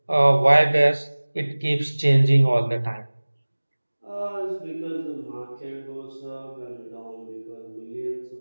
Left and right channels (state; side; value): inverted; both; correlation -1.00